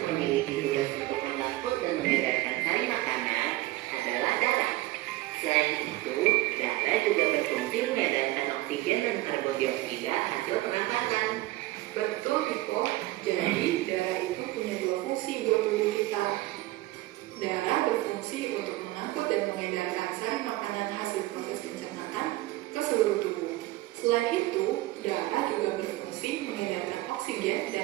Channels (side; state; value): left; quieter; 18.2 dB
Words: memiliki tugas untuk mengangkut dan mengedarkan sari makanan adalah darah. Selain itu, darah juga berfungsi mengedarkan oksigen dan karbon dioksida hasil pernapasan. Betul, Niko. Jadi, darah itu punya dua fungsi buat tubuh kita. Darah berfungsi untuk mengangkut dan mengedarkan sari makanan hasil proses pencernaan ke seluruh tubuh. Selain itu, darah juga berfungsi mengedarkan oksigen